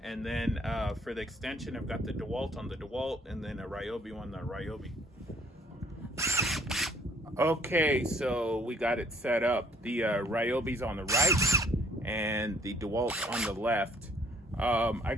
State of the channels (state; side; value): normal; both; correlation 0.61